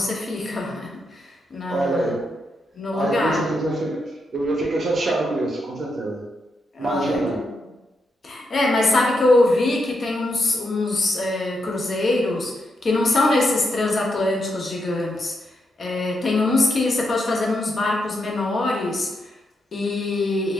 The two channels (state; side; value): normal; both; correlation 0.82